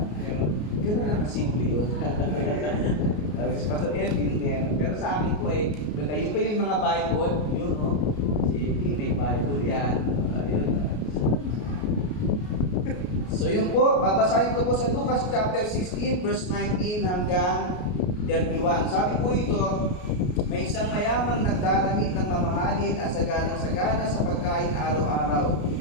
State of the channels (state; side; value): late; right; 33 ms